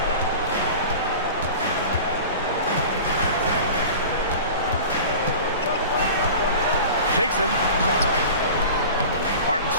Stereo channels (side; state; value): both; inverted; correlation -0.37